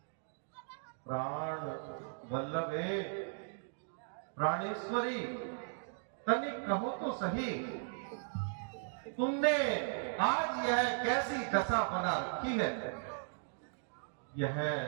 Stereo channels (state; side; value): silent; left; digital silence